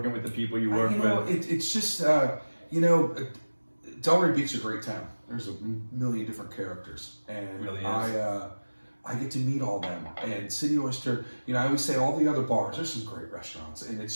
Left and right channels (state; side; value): inverted; both; correlation -1.00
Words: with the people you work with. It's just, Delray Beach is a great town. There's a million different characters, and it really is. I get to meet all them. And City Oyster, I always say all the other bars, there's some great restaurants, and it's